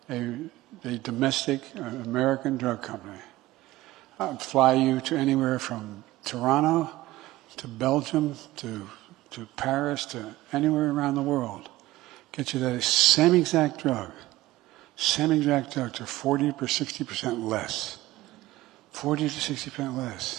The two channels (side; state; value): left; quieter; 17.1 dB